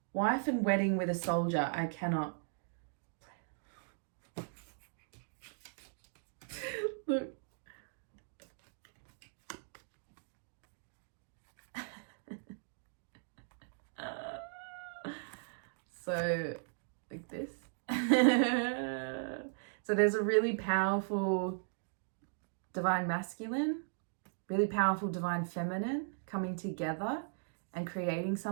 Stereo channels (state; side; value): silent; left; digital silence